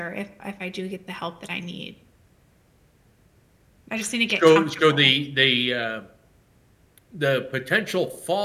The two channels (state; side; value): identical; both; correlation 1.00